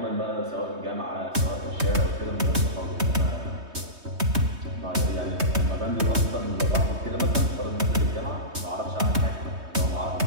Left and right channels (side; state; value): left; late; 3.2 ms